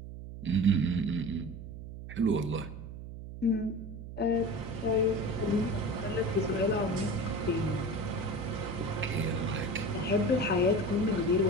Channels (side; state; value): right; noise; hum, 11 dB below the sound